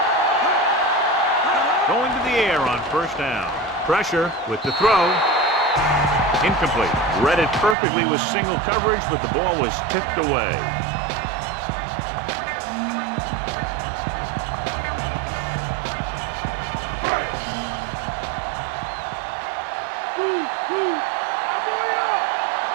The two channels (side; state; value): left; drops out; at 7.8 s